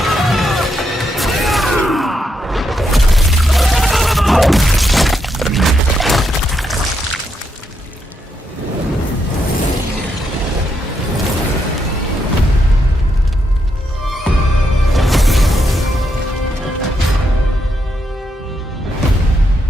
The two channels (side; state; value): both; normal; correlation 0.80